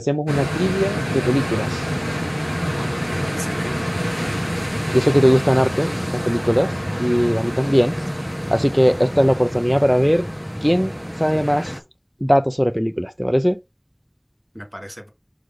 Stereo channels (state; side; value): identical; both; correlation 1.00